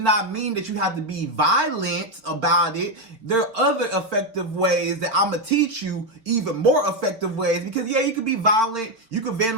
mean that you have to be violent about it. There are other effective ways that I'm going to teach you, even more effective ways. Because, yeah, you could be violent. You could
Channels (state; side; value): late; left; 4.6 ms